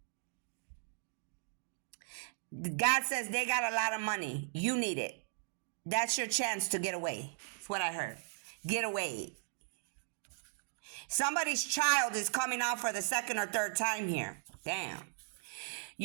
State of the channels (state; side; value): silent; left; digital silence